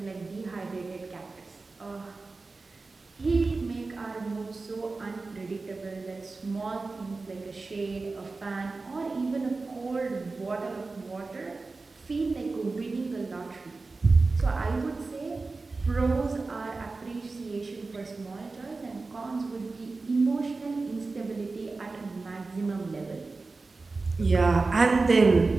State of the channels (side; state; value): left; quieter; 3.8 dB